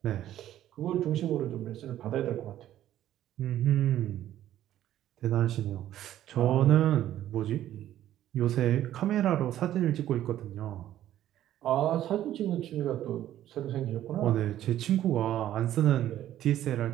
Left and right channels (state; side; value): quieter; left; 12.4 dB